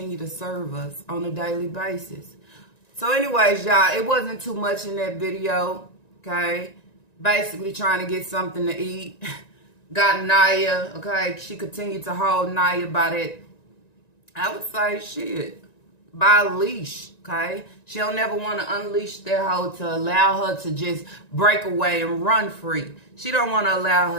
to serve us on a daily basis. So anyways, y'all, it wasn't too much in that video, okay? Basically trying to get something to eat. Got Naya, okay? She continued to hold Naya by that, I would say, shit, by a leash, okay? She'll never want to unleash that hoe to allow her to just break away and run free. She don't want to allow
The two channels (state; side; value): late; right; 1.9 ms